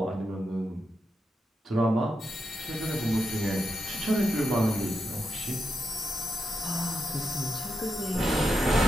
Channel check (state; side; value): normal; both; correlation 0.85